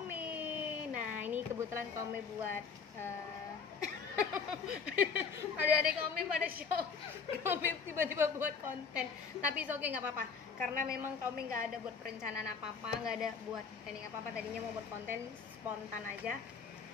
Nah, ini kebetulan Kak Ome buat adik-adik Kak Ome pada show. Kak Ome tiba-tiba buat konten. Tapi oke, nggak apa-apa. Karena memang Kak Ome nggak ada buat perencanaan apa-apa, nggak ada buat planning apa-apa. Tadinya mau buat konten spontan aja.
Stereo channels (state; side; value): quieter; right; 5.7 dB